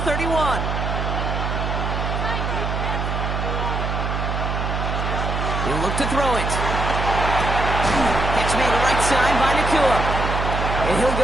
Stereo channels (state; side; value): noise; right; hum, 2 dB below the sound